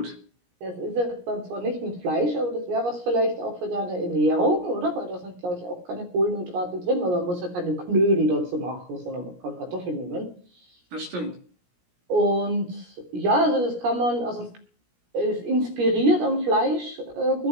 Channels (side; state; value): left; late; 17 ms